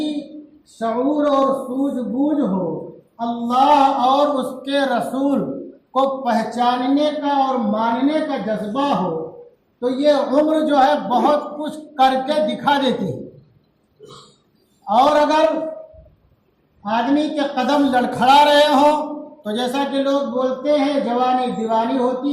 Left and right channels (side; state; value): both; identical; correlation 1.00